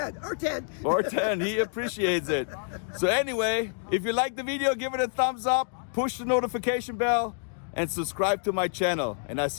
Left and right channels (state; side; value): silent; right; digital silence